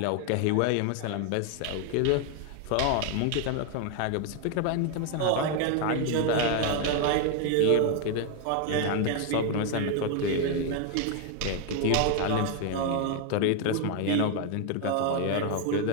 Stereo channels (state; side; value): different; both; correlation 0.01